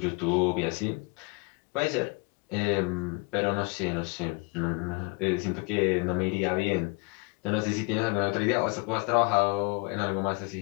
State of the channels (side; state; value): right; quieter; 29.2 dB